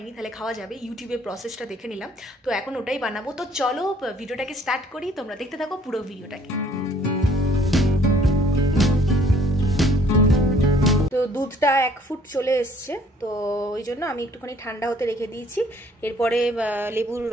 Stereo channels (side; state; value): both; normal; correlation 0.59